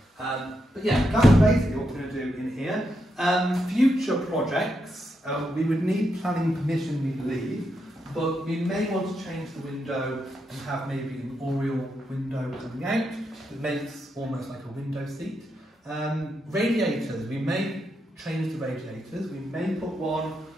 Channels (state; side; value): normal; both; correlation 0.83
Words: But yeah, that's basically what we're going to do in here. Future projects, we would need planning permission, we believe, but we may want to change the window and have maybe an oriel window coming out that makes almost like a window seat. Radiators, we may change the radiators. We may put one,